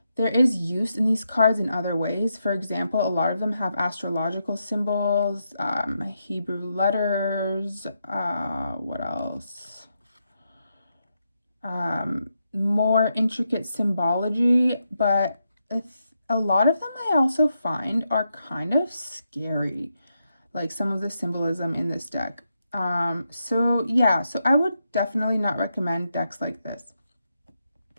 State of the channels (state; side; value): inverted; both; correlation -0.83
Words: there is use in these cards in other ways. For example, a lot of them have astrological symbols, Hebrew letters, what else? More intricate symbology, but a lot of them I also find are kind of scary, like some of the symbolism in this deck. So I would definitely not recommend decks like this.